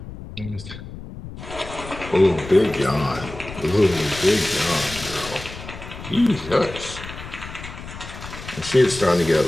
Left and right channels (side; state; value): left; noise; rumble, 12 dB below the sound